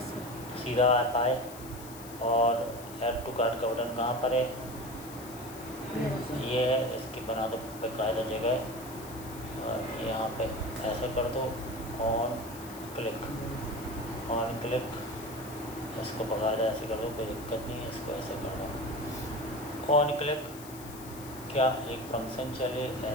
sir. सीधा आप आए और ऐड टू कार्ट का बटन कहाँ पर है, मेरा सर। ये है, इसकी बना दो बेकायदा जगह। और यहाँ पे ऐसे कर दो, ऑन क्लिक, इसको बकायदा ऐसे कर दो, कोई दिक्कत नहीं है, इसको ऐसे कर दो, ऑन क्लिक। क्या एक फंक्शन चले,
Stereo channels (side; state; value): left; noise; hiss, 16 dB below the sound